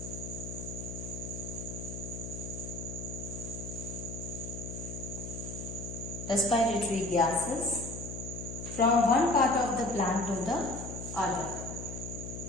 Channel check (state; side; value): noise; left; hum, 7 dB below the sound